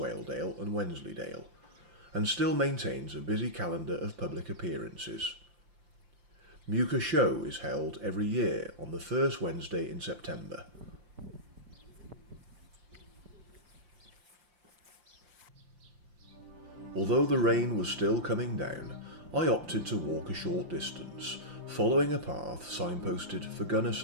and Wensleydale, and still maintains a busy calendar of public appearances. Muka Show is held every year on the first Wednesday in September. Although the rain was still coming down, I opted to walk a short distance, following a path signposted for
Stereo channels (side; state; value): left; late; 5.8 ms